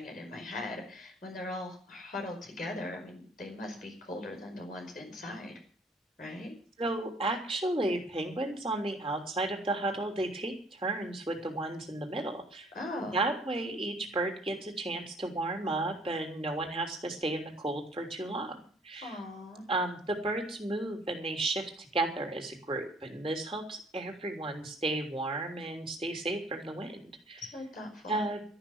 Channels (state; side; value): normal; both; correlation 0.57